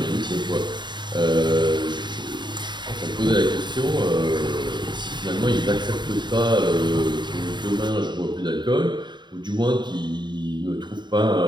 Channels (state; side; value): late; left; 0.22 ms